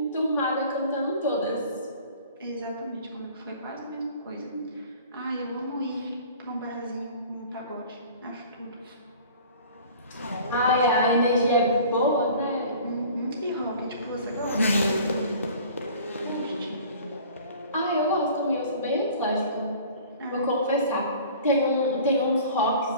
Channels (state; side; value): inverted; both; correlation -0.46